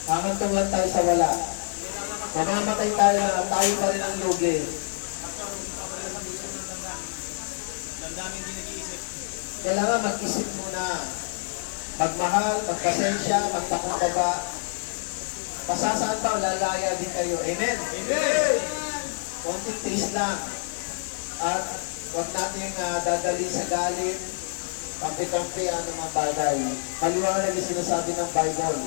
Hahantong lang tayo sa wala. Mamamatay tayo na tayo pa rin ang lugi. Kailangan mag-isip muna. Magmahal, magpasensya, magpakumbaba. Pasasaan pa, lalaya din kayo. Amen? Amen. Konting tiis lang. At huwag natin dadalhin sa galit, kampi-kampi, anumang bagay. Maliwanag yung sinasabi ng Bible.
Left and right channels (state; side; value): silent; right; digital silence